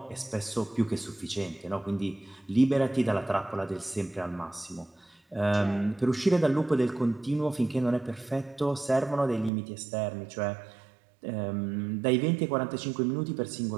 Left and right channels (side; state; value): left; drops out; at 9.5 s